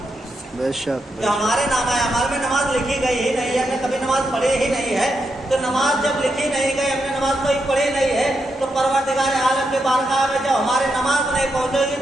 बेशक जो हमारे नामा अमाल में नमाज लिखी गई ही नहीं है, हमने कभी नमाज पढ़ी ही नहीं है, तो नमाज जब लिखी नहीं गई, हमने नमाज कोई पढ़ी नहीं है, तो परवरदिगार आलम के बारगाह में जब हमारे नमाज नहीं पहुंचेगी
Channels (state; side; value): normal; both; correlation 0.83